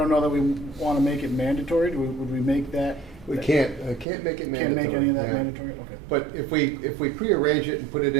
know that we want to make it mandatory. Would we make that? We can't make it mandatory. Can't make any of that yeah. mandatory? Okay. But if we prearrange it and put it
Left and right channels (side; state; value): left; drops out; at 4.0 s